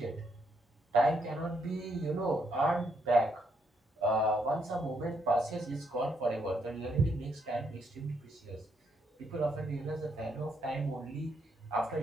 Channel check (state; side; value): normal; both; correlation 0.75